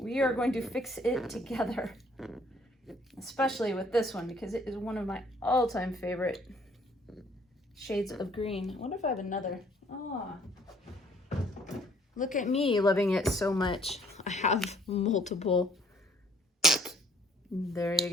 are going to fix it together, especially with this one because it is one of my all-time favorite shades of green. I wonder if I have another. Oh, look at me loving it so much. I have multiple. There you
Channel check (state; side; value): normal; both; correlation 0.61